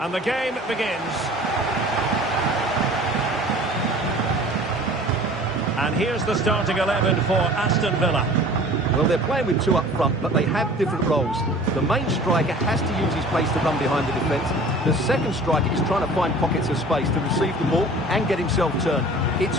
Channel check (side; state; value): both; normal; correlation 0.45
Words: And the game begins. And here's the starting 11 for Aston Villa. Well, they're playing with two up front, but they have different roles. The main striker has to use his pace to run behind the defence. The second striker is trying to find pockets of space to receive the ball and get himself turned.